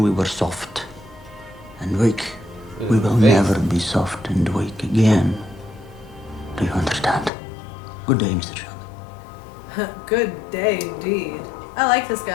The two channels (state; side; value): drops out; right; at 7.3 s